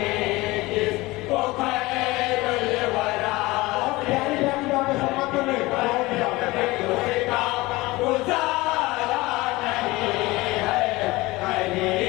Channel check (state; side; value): quieter; right; 20.9 dB